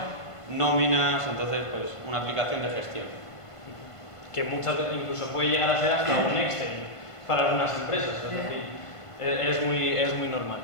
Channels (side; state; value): right; late; 1.5 ms